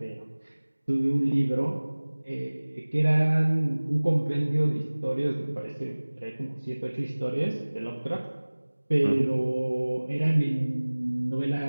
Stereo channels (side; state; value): both; inverted; correlation -1.00